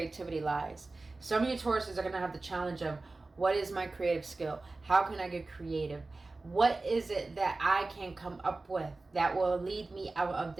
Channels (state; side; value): quieter; left; 3.4 dB